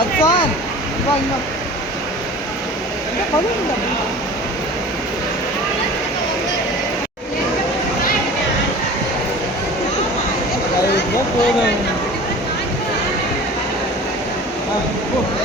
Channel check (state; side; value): normal; both; correlation 0.40